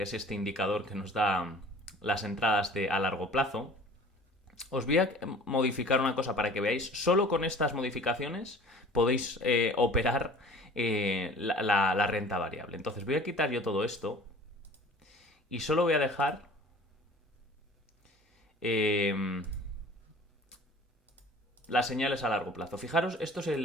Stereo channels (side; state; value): both; normal; correlation 0.46